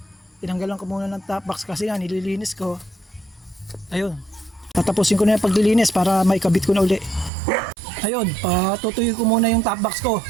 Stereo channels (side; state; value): left; drops out; at 7.3 s